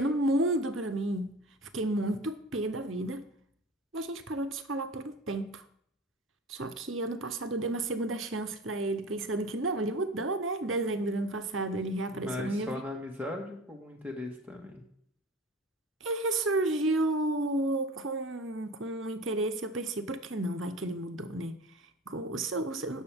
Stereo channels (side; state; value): both; normal; correlation 0.36